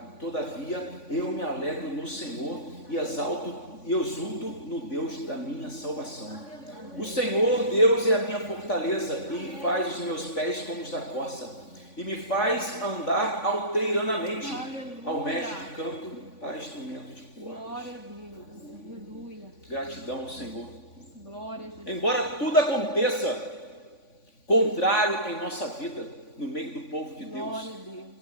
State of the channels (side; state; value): right; late; 3.5 ms